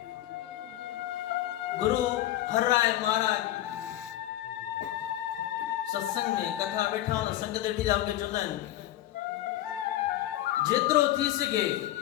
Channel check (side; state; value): right; quieter; 13.9 dB